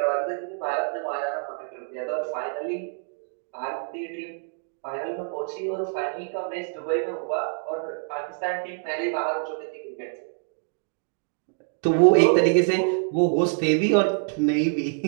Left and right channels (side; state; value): left; silent; 61 dB below the other